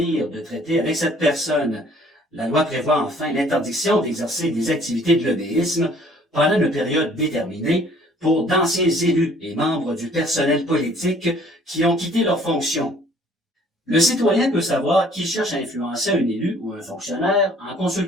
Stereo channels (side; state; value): both; normal; correlation 0.57